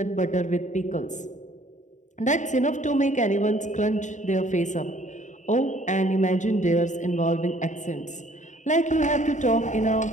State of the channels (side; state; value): right; late; 0.35 ms